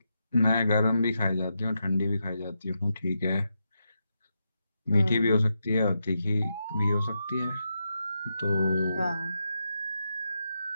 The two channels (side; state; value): both; inverted; correlation -0.85